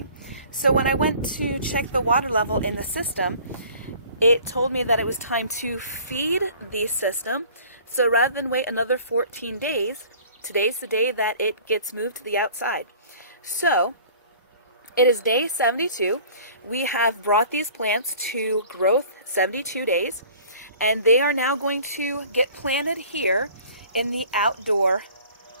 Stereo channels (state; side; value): inverted; both; correlation -0.49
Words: So when I went to check the water level in the system, it told me that it was time to feed the system. So rather than wait another 14 days, today's the day that it gets moved to the outside. So it is day 72. We have brought these plants to growth 72 days. And they are now going to get planted here in the outdoor